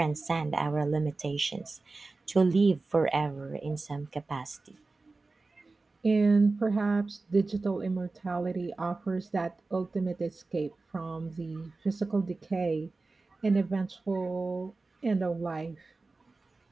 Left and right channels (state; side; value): quieter; left; 3.6 dB